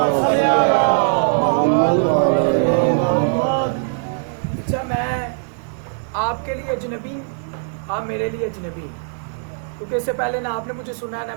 اچھا، میں آپ کے لیے اجنبی، آپ میرے لیے اجنبی، کیونکہ اس سے پہلے نہ آپ نے مجھے سنا ہے نہ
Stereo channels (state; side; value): silent; left; digital silence